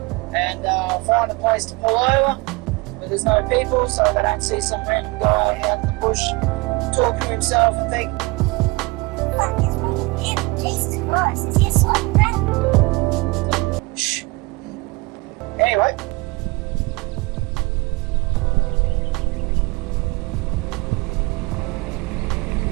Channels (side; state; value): left; quieter; 24.7 dB